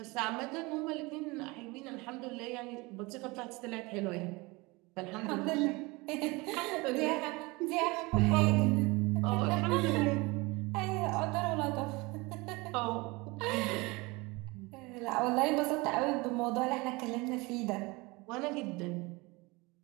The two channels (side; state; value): left; quieter; 24.5 dB